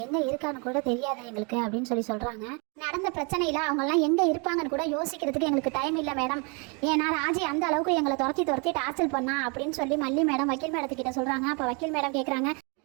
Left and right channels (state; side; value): quieter; left; 33.0 dB